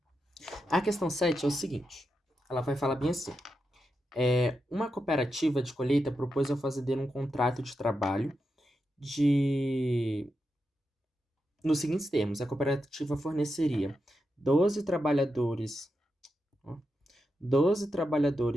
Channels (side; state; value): both; normal; correlation 0.87